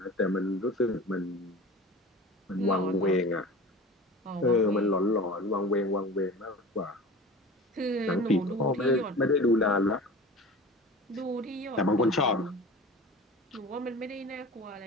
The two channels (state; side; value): normal; both; correlation 0.37